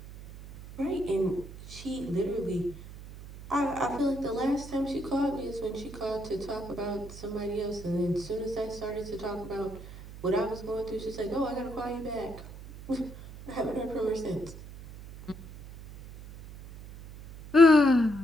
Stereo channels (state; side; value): noise; right; hum, 14 dB below the sound